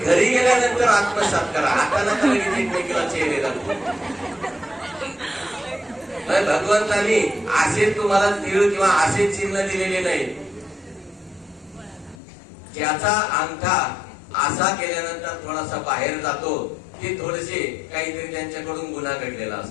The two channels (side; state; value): right; drops out; at 12.2 s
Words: गेल्यानंतर आत्मसात करा. आता नका लगेच एकमेकीला चेहरे दाखवू. भगवंतानी असे तुम्हाला तीळ किंवा असे चिन्ह दिलेले नाही. ज्याचा अंगठा असा केल्यानंतर थोडासा बाहेर जातो ते थोडेसे काहीतरी त्यांच्याकडून गुन्हा घडलेला